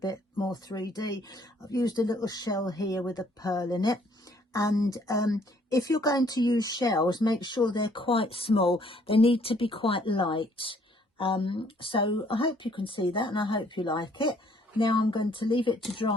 more 3D. I've used a little shell here with a pearl in it. And if you're going to use shells, make sure they're quite small. They need to be quite light. So I hope you can see that, and I hope you like it. Now I'm going to leave it to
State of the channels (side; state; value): both; normal; correlation 0.63